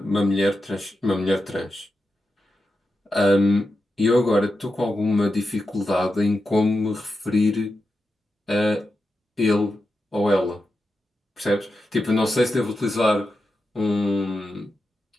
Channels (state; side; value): normal; both; correlation 0.88